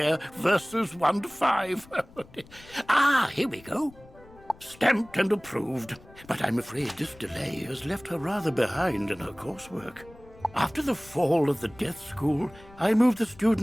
verses 1 to 5. Here we go. Stamped and approved. But I'm afraid this delay has left her rather behind in her coursework. After the fall of the Death School, I moved the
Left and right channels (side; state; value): left; noise; rumble, 23 dB below the sound